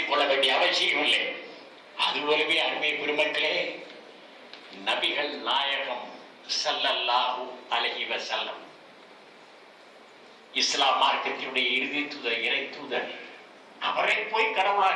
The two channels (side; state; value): both; identical; correlation 1.00